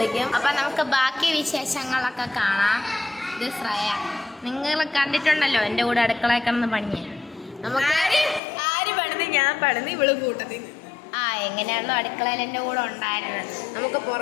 അപ്പം നമുക്ക് ബാക്കി വിശേഷങ്ങളൊക്കെ കാണാം. ഇത് ശ്രേയ, നിങ്ങൾ കണ്ടിട്ടുണ്ടല്ലോ എൻ്റെ കൂടെ അടുക്കളയിൽ കിടന്ന് പണിയെ. നമുക്ക് ആര് പണിത്? ഞാൻ പണിത്, ഇവള് കൂട്ടത്തിൽ. എങ്ങനെയാണല്ലോ അടുക്കളയിൽ എൻ്റെ കൂടെ ഉണ്ടായിരുന്നത്. നമുക്ക്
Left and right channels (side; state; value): right; drops out; at 8.4 s